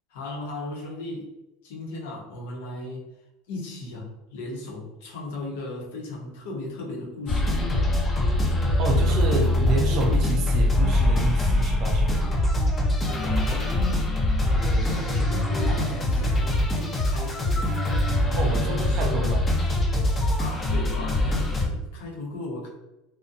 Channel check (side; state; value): both; normal; correlation 0.63